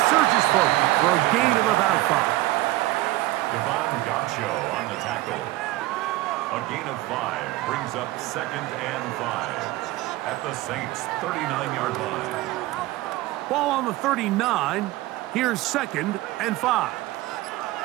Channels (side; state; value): left; quieter; 17.6 dB